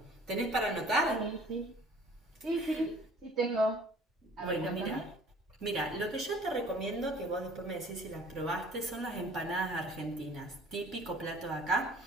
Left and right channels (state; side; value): normal; both; correlation 0.51